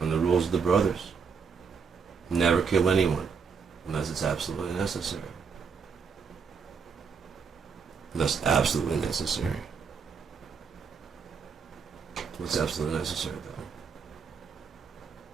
And the rules of the brothers. Never kill anyone unless it's absolutely necessary. That's absolutely necessary. What's absolutely necessary, though?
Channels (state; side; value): quieter; left; 5.8 dB